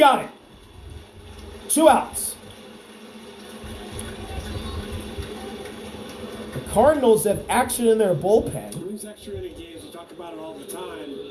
it. 2 outs. The Cardinals have action in their bullpen. These extra inning games, we talk about it all the time.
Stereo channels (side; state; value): both; identical; correlation 1.00